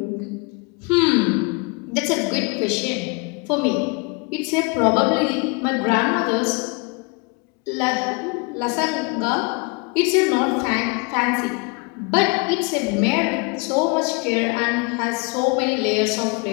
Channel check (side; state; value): right; quieter; 30.3 dB